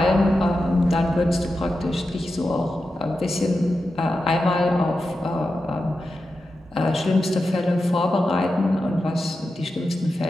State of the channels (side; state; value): both; normal; correlation 0.90